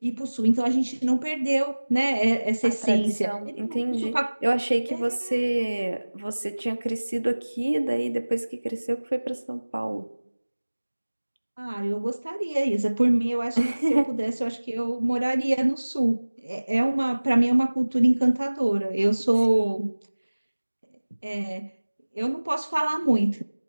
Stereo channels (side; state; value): both; inverted; correlation -1.00